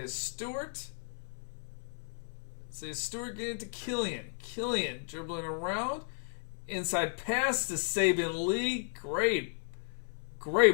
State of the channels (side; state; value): right; silent; 55 dB below the other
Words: Stewart. Isaiah Stewart getting to Killian. Killian dribbling around. Inside pass to Saban Lee. Great